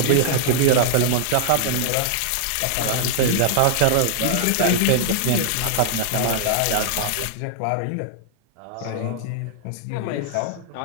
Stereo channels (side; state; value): both; different; correlation -0.01